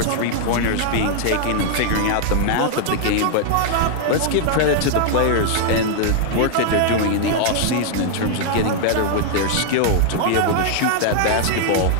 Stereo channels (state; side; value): different; both; correlation -0.01